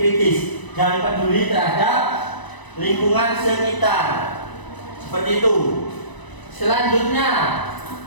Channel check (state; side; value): late; right; 1.0 ms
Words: dan peduli terhadap lingkungan sekitar. Seperti itu. Selanjutnya,